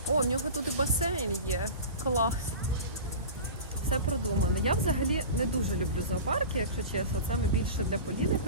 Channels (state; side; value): inverted; both; correlation -0.33